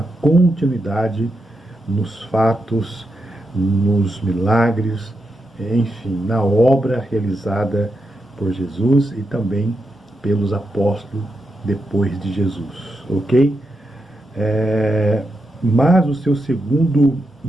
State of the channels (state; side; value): normal; both; correlation 0.86